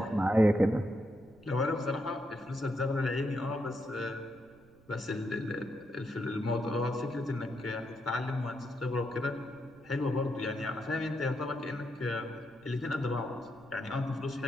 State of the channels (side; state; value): right; noise; rumble, 27 dB below the sound